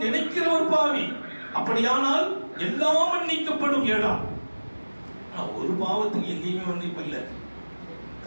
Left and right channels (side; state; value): both; inverted; correlation -1.00